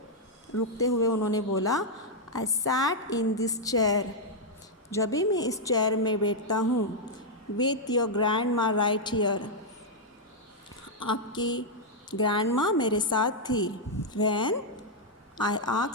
रुकते हुए उन्होंने बोला, I sat in this chair, जब भी मैं इस चेयर में बैठता हूँ, with your grandma right here, आपकी ग्रैंड माँ मेरे साथ थी। When I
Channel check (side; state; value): both; normal; correlation -0.03